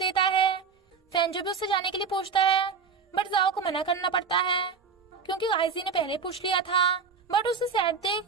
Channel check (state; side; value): quieter; left; 5.6 dB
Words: है। फैंजो भी उससे जाने के लिए पूछता है बट जाओ को मना करना पड़ता है क्योंकि काइजी ने पहले पूछ लिया था। बट उसे सैड देख